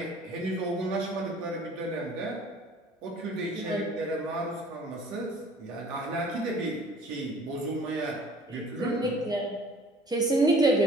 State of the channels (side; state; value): both; normal; correlation 0.51